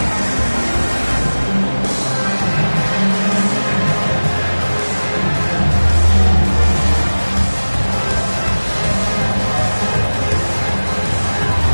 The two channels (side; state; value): both; inverted; correlation -1.00